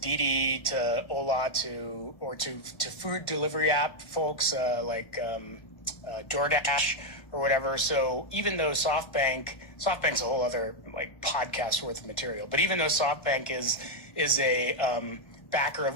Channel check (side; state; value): right; late; 1.3 ms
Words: to Ola, to food delivery app folks like DoorDash or whatever. So even though SoftBank's a whole other like podcast worth of material, but even though SoftBank is a backer